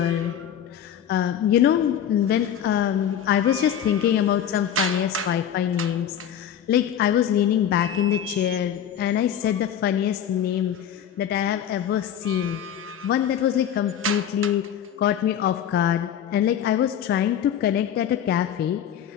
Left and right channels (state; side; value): quieter; right; 9.4 dB